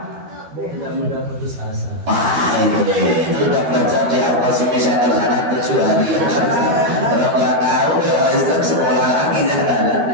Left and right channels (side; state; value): left; late; 12 ms